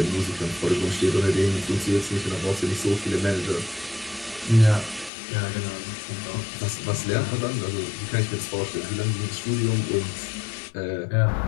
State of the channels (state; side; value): drops out; right; at 5.1 s